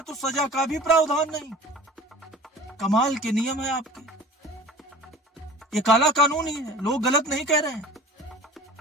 तो सजा का भी प्रावधान नहीं। कमाल के नियम है आपके। ये काला कानून ही है, लोग गलत नहीं कह रहे हैं।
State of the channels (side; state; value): both; normal; correlation 0.42